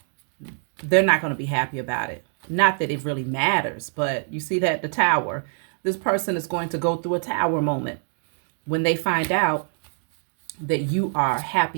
they're not going to be happy about it. Not that it really matters, but you see that the tower, this person is going to go through a tower moment when they find out that you are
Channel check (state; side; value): silent; left; digital silence